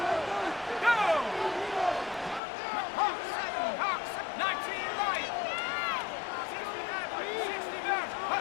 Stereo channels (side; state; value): right; drops out; at 2.4 s